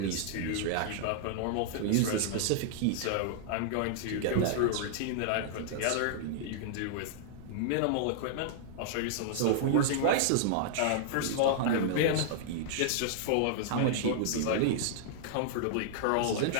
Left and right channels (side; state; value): both; different; correlation -0.01